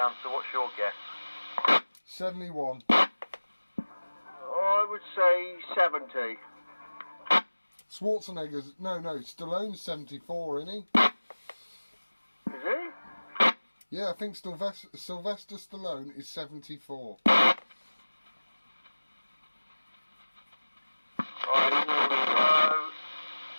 answer, what's your guess? 71. I would say 70. Schwarzenegger's... No, Stallone's 74, isn't he? Is he? Yeah, I think Sylvester Stallone is 74. I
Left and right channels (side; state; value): both; inverted; correlation -1.00